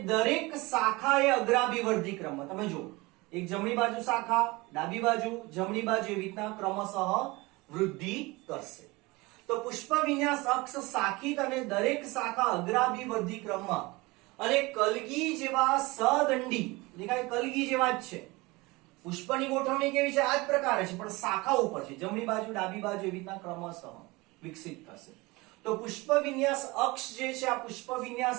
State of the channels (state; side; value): quieter; left; 23.1 dB